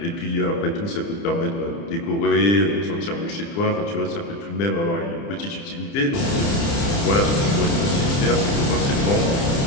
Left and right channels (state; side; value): late; right; 30 ms